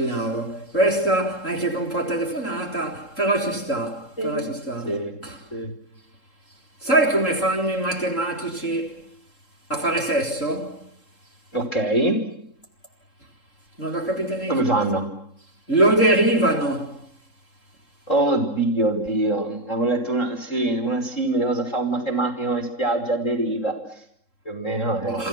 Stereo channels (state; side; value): late; right; 3.7 ms